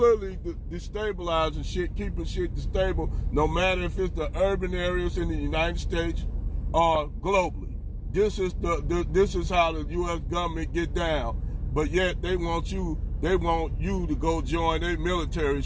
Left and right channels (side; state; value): both; identical; correlation 1.00